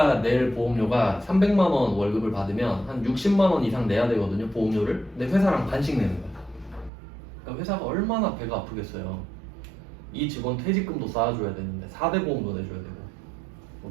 낼 보험료가 300만 원 월급을 받으면 한 60만 원 이상 내야 되거든요. 보험료를. 근데 회사랑 반씩 내는 거야. 그러니까 회사가 얼마나 배가 아프겠어요. 이 직원 퇴직금도 쌓아줘야 되는데 4대 보험도 내줘야 되고 뭐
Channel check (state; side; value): drops out; left; at 6.9 s